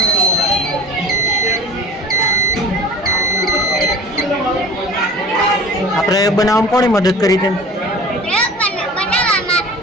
આ પ્રયોગ બનાવવામાં કોણે મદદ કરી તેમ? પ્રયોગ બનાવવામાં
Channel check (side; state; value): both; normal; correlation 0.40